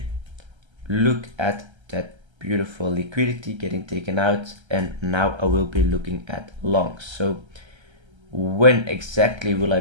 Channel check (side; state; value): left; late; 1.3 ms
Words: look at that beautiful liquidity getting taken out, and now I will be looking at longs. So when exactly will I